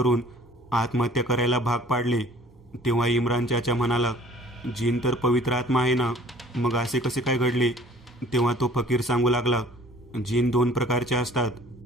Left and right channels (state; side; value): normal; both; correlation 0.52